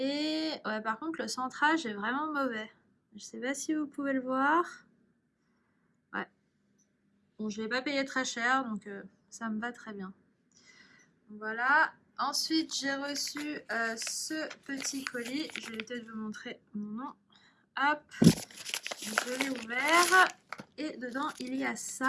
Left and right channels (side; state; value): both; identical; correlation 1.00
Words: ouais, par contre, le centrage est vraiment mauvais. Je sais pas si vous pouvez le voir. Ouais. Bon, je l'ai pas payé très cher, donc ça me va très bien. Voilà. Ensuite, j'ai reçu ce petit colis. Je vais peut-être vous montrer mon nom. Hop. Je l'ai ouvert. Et dedans, il y a